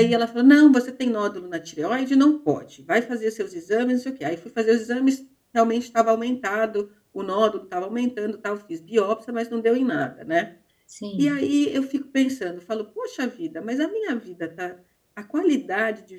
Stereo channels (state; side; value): identical; both; correlation 1.00